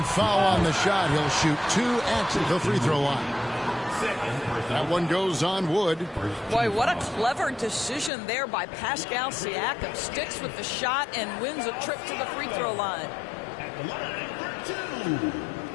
foul on the shot. He'll shoot 2 at the free throw line. That one goes on Wood. Boy, what a clever decision there by Pascal Siakam. Sticks with the shot and wins a trip to the free throw line. At the line for 2.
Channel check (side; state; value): right; drops out; at 8.1 s